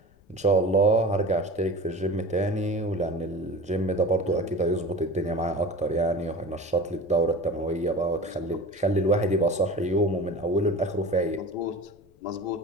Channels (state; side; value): noise; left; rumble, 29 dB below the sound